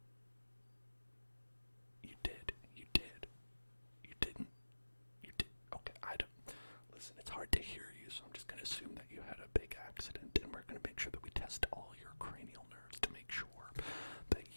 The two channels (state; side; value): inverted; both; correlation -1.00